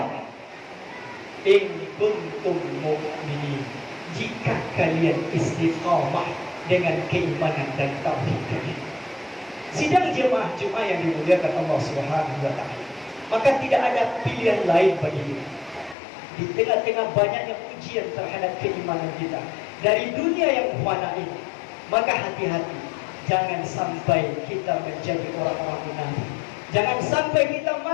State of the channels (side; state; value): right; drops out; at 16.0 s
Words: In kuntum mu'minin. Jika kalian istiqamah dengan keimanan dan tauhid kalian. Sidang jemaah Jumat yang dimuliakan Allah Subhanahu wa ta'ala, maka tidak ada pilihan lain bagi kita. Di tengah-tengah banyaknya ujian terhadap keimanan kita dari dunia yang fana ini, maka hati-hati, jangan sampai kita menjadi orang-orang munafik. Jangan sampai kita